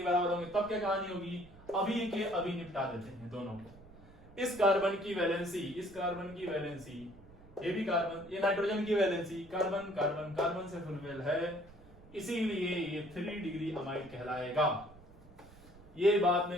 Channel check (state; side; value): noise; right; rumble, 22 dB below the sound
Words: बराबर होंगे तब क्या कहानी होगी। अभी के अभी निपटा देते हैं दोनों को। इस कार्बन की वैलेंसी, इस कार्बन की वैलेंसी, ये भी कार्बन, ये नाइट्रोजन की वैलेंसी, कार्बन कार्बन कार्बन से फुलफिल है, इसीलिए ये 3 डिग्री अमाइड कहलाएगा। ये बात